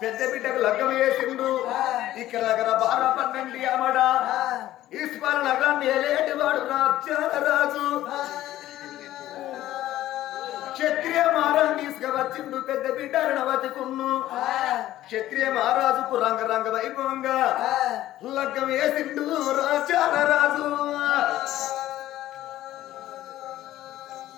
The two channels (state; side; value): quieter; right; 14.2 dB